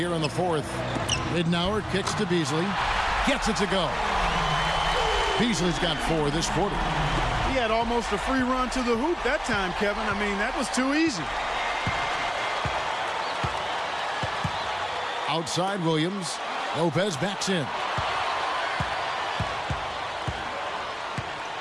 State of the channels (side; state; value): both; identical; correlation 1.00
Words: in the fourth. Ridnour kicks to Beasley. Gets it to go. Beasley's got 4 this quarter. He had almost a free run to the hoop that time, Kevin. I mean, that was too easy. Outside Williams. Lopez backs in.